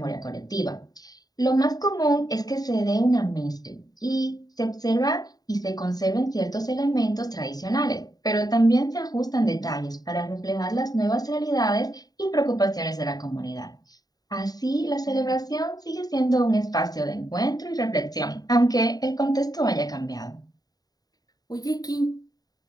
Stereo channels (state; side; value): late; right; 0.18 ms